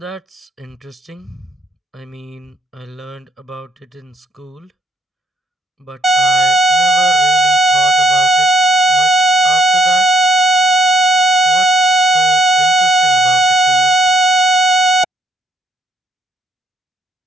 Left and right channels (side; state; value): both; normal; correlation 0.70